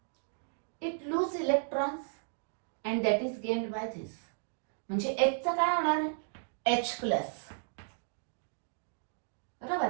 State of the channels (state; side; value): silent; left; digital silence